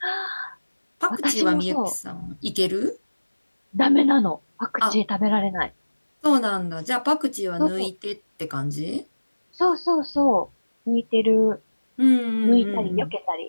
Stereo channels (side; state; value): both; inverted; correlation -1.00